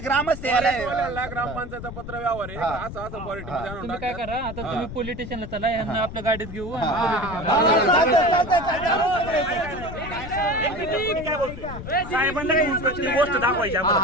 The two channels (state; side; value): noise; left; rumble, 10 dB below the sound